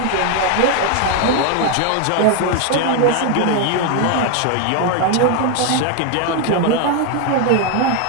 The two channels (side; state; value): both; different; correlation 0.01